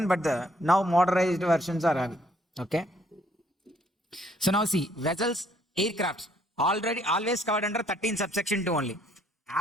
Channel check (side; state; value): both; normal; correlation 0.66